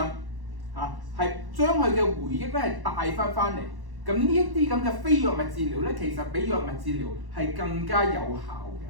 係將佢嘅回憶咧係帶翻嚟。咁呢一啲咁嘅非藥物治療咧，其實比藥物治療係更加有效嘅。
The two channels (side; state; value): left; late; 1.1 ms